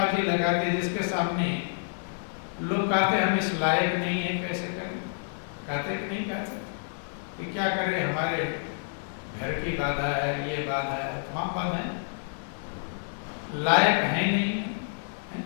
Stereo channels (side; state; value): right; silent; digital silence